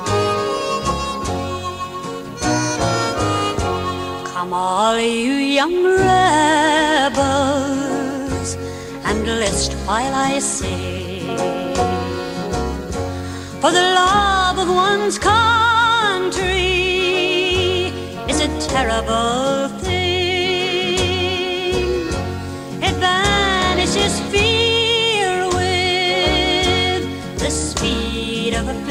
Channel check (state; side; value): identical; both; correlation 1.00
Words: all you young rebels, and list while I sing, for the love of one's country is a terrible thing. It banishes fear with the speed of a